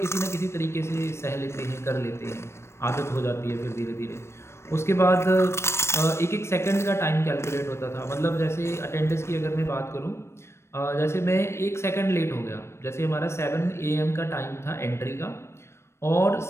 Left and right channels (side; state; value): right; late; 0.13 ms